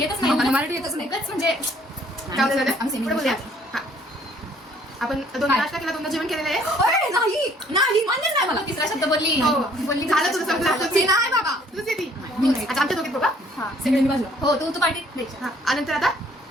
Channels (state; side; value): normal; both; correlation 0.60